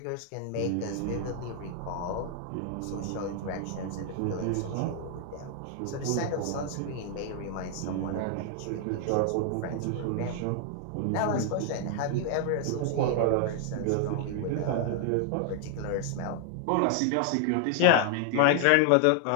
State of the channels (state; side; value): different; both; correlation 0.00